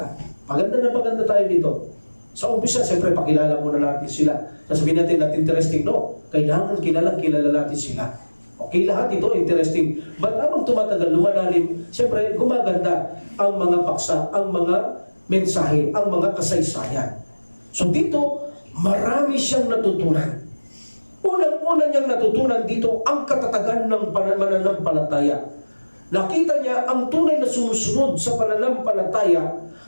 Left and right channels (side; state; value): both; inverted; correlation -1.00